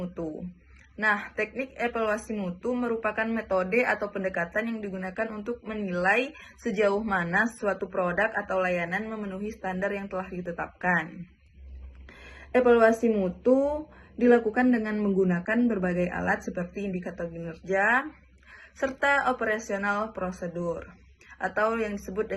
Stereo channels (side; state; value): both; identical; correlation 1.00